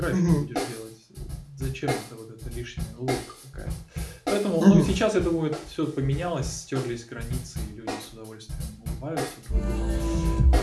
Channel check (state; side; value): identical; both; correlation 1.00